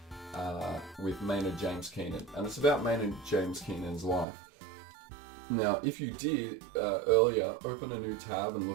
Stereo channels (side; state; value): left; drops out; at 4.2 s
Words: with Maynard James Keenan, and it's about Maynard James Keenan's life. Now, if you did earlier open a new tab and